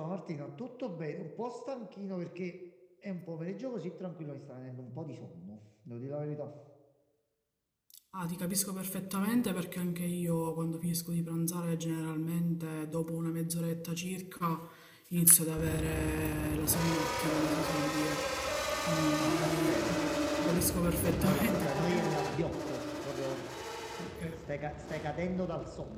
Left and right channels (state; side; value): identical; both; correlation 1.00